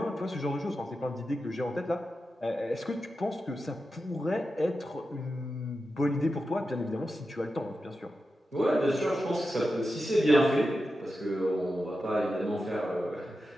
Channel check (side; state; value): both; normal; correlation 0.90